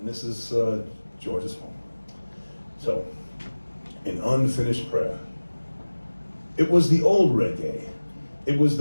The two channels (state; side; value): inverted; both; correlation -1.00